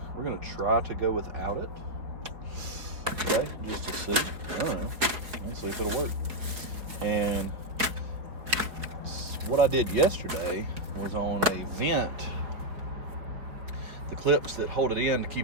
we're going to try to go without it. Okay, just to see. I don't know. Let's see if it'll work. And what I did yesterday was on a vent. The clips that hold it in to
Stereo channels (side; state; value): left; late; 4.5 ms